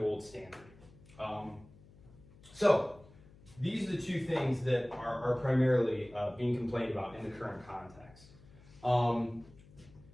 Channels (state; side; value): noise; left; hum, 23 dB below the sound